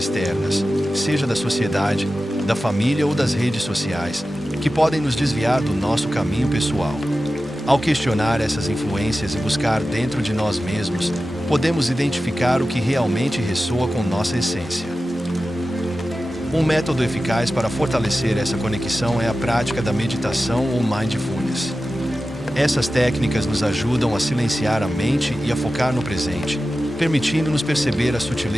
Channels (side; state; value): both; normal; correlation 0.94